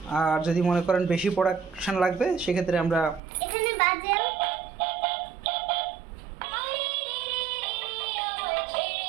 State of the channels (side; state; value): left; drops out; at 3.2 s